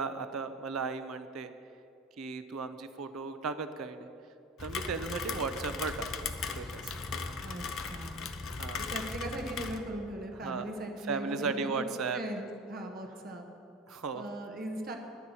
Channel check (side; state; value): both; normal; correlation 0.33